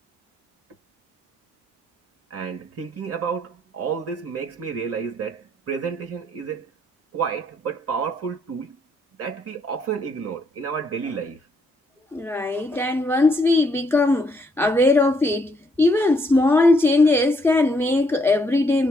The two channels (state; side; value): normal; both; correlation 0.72